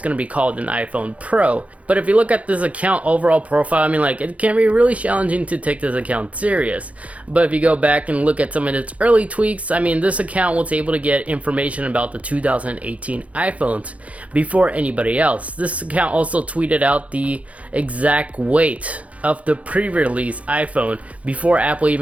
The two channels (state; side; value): late; left; 0.066 ms